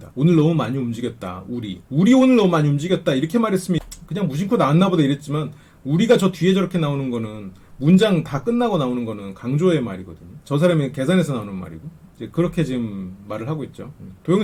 오늘 너무 많이 움직였다. 우리 오늘 너무 많이 움직였다. 이렇게 말했으면 그냥 무심코 나왔나 보다 이랬지만 우리가 저 뒤에 저렇게 나오는 거는 문장 다 끝나고 나오는 거는 강조의 말이거든요. 저 사람이 계산해서 나오는 말이고 이제 그렇게 지금 말을 하고 있죠. 도영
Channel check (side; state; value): both; identical; correlation 1.00